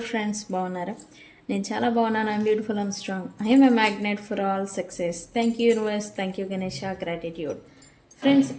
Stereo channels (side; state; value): both; identical; correlation 1.00